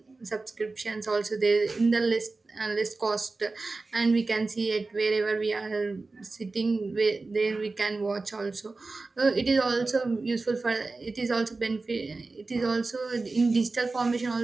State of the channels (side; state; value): left; quieter; 3.6 dB